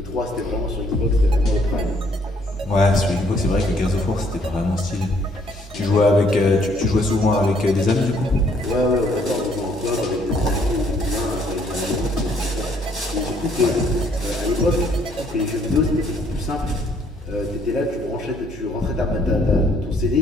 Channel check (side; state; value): both; normal; correlation 0.65